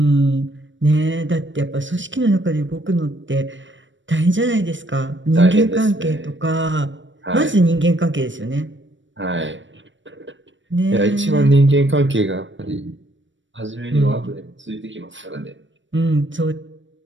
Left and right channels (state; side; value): late; left; 0.55 ms